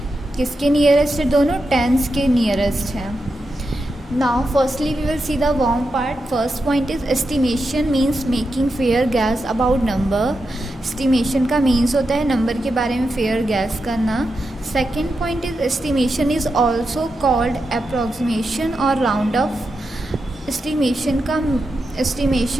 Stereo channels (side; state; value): both; normal; correlation 0.88